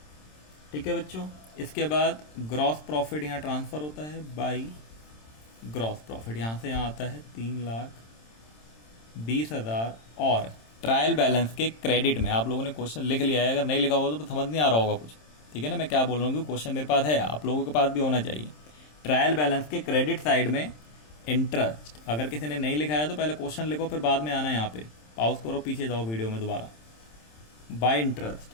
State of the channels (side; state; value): right; late; 27 ms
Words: ठीक है बच्चों। इसके बाद ग्रॉस प्रॉफिट यहाँ ट्रांसफर होता है बाई ग्रॉस प्रॉफिट, यहाँ से यहाँ आता है 3,20,000, और ट्रायल बैलेंस के क्रेडिट में आप लोगों ने क्वेश्चन लिख लिया है, अगर नहीं लिखा होगा तो समझ नहीं आ रहा होगा कुछ, ठीक है ना। मैं क्या बोल रहा हूँ, क्वेश्चन मेरे पास है, आप लोगों के पास भी होना चाहिए। ट्रायल बैलेंस के क्रेडिट साइड में इंटरेस्ट, अगर किसी ने नहीं लिखा है तो पहले क्वेश्चन लिखो, फिर बाद में आना यहाँ पे, पॉज करो, पीछे जाओ वीडियो में दोबारा। बाय इंटरेस्ट,